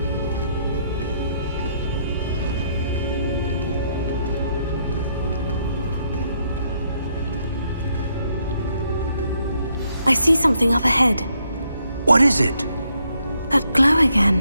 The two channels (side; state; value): both; inverted; correlation -0.74